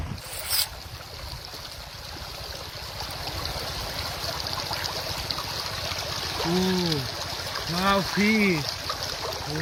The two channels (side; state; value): both; identical; correlation 1.00